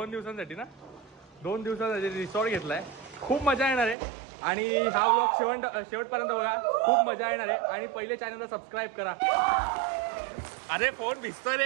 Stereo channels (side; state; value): left; drops out; at 4.0 s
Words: दिवसांसाठी ना, 2 दिवसांसाठी रिसॉर्ट घेतलाय. खूप मजा येणार आहे आणि हा ब्लॉग शेवटपर्यंत बघा. खूप मजा येणार आहे. आणि पहिले चॅनलला सबस्क्राईब करा. अरे फोन भिजतोय